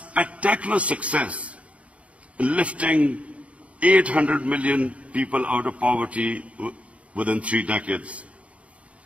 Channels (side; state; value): left; late; 0.064 ms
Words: success in lifting 800 million people out of poverty within 3 decades.